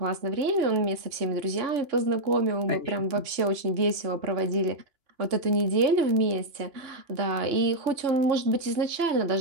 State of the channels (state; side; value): late; left; 2.9 ms